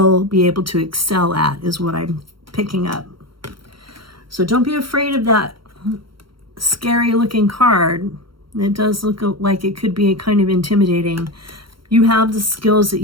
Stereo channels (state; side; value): late; left; 0.73 ms